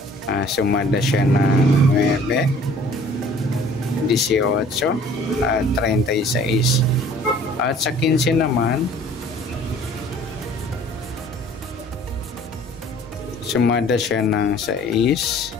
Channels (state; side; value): normal; both; correlation 0.52